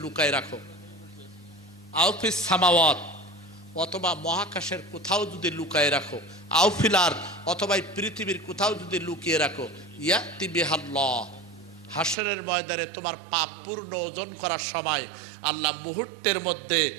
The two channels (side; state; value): left; drops out; at 12.2 s